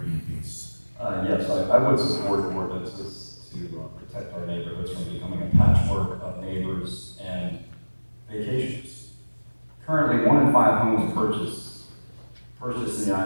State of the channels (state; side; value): inverted; both; correlation -1.00